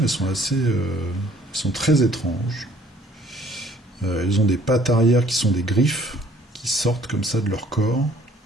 elles sont sont très étranges. Elles ont des pattes arrière qui sont des griffes, qui sortent comme ça de leur corps.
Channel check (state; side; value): normal; both; correlation 0.58